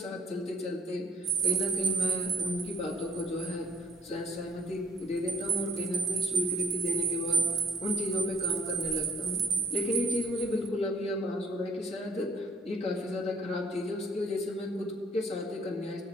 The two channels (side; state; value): both; normal; correlation 0.61